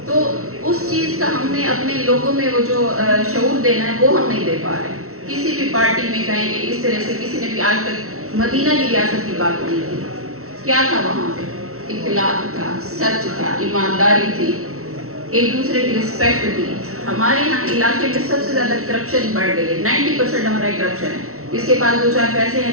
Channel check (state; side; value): late; left; 0.63 ms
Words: تو اس چیز کا ہم نے اپنے لوگوں میں وہ جو شعور دینا ہے وہ ہم نہیں دے پا رہے۔ کسی بھی پارٹی میں کہیں کہ اس طرح سے کسی نے بھی آج تک مدینہ کی ریاست کی بات نہیں کی۔ کیا تھا وہاں پہ؟ اخلاق تھا، سچ تھا، ایمانداری تھی، ایک دوسرے کی رسپیکٹ تھی۔ ہمارے یہاں علاقے میں سب سے زیادہ کرپشن بڑھ گئی ہے، 90% ہمارا کرپشن ہے۔ جس کے پاس 2-4 پیسے ہیں